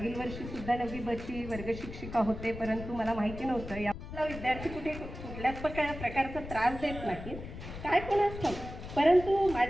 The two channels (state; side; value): noise; left; rumble, 10 dB below the sound